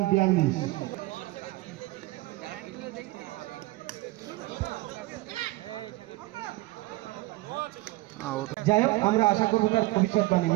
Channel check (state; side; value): quieter; left; 19.8 dB